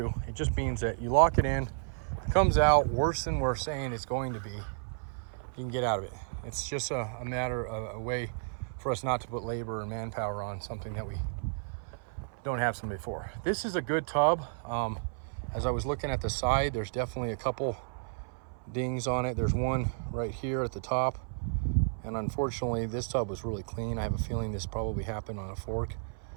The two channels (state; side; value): silent; left; 56 dB below the other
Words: It just means that you lock it in, it comes out worse than we're saying it's going to be, you can get out of it. It's just a matter of a way for us not to put labor and manpower on something that we don't have somebody for. This is a good tub. As I was looking at the side, there's definitely a couple dings on it. There's one right here at the top. And unfortunately, this tub was really clean. I have a feeling this probably happened on a fork